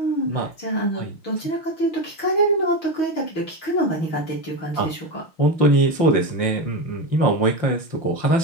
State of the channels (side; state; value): right; late; 6.3 ms